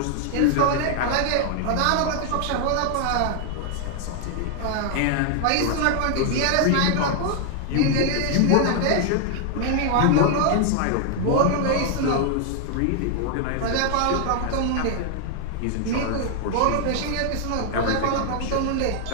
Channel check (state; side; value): different; both; correlation 0.00